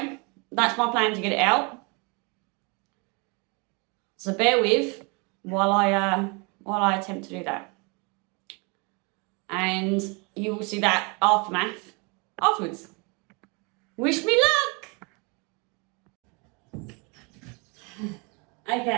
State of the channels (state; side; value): quieter; left; 31.2 dB